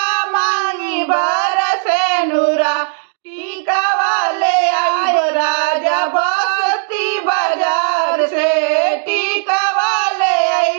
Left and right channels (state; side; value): silent; left; 67 dB below the other